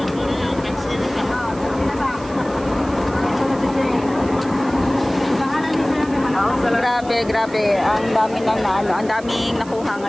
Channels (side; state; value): right; noise; hiss, 21 dB below the sound